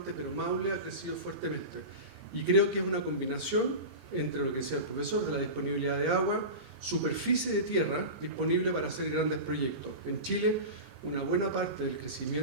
pero Maule ha crecido fuertemente. Y creo que es una combinación entre lo que decía el profesor, de la disponibilidad de agua, superficie de tierra disponible para hacer grandes proyectos. En Chile, una buena parte del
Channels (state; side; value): late; left; 31 ms